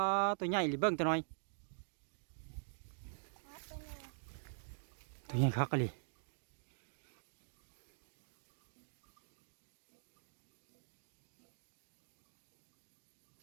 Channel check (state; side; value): silent; left; digital silence